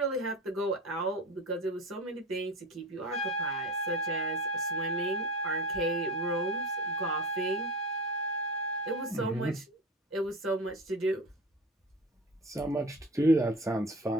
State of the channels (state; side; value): normal; both; correlation 0.30